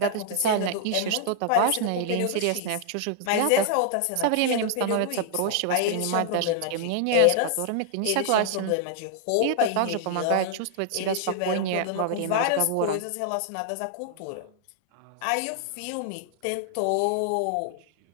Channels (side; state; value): both; different; correlation 0.00